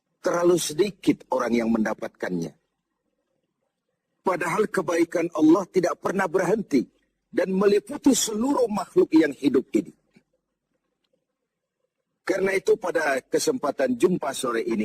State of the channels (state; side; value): identical; both; correlation 1.00